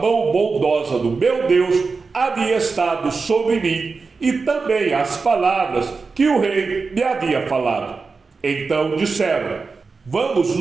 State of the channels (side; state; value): left; quieter; 4.5 dB